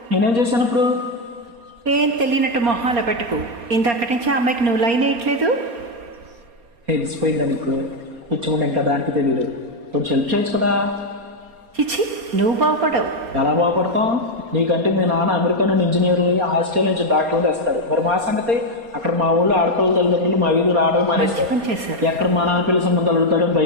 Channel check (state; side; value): late; left; 4.3 ms